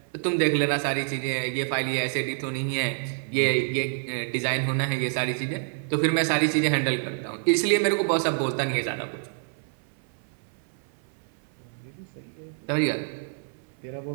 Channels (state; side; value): silent; left; 58 dB below the other